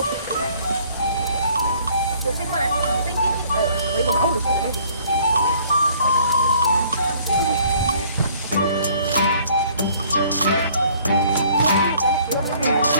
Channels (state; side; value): inverted; both; correlation -0.58